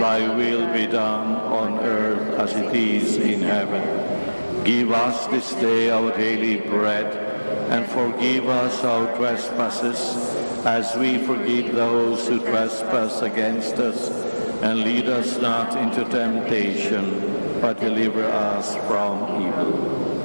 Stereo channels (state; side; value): inverted; both; correlation -1.00